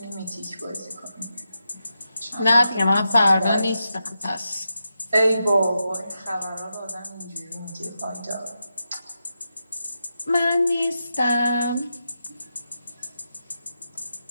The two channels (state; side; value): inverted; both; correlation -0.87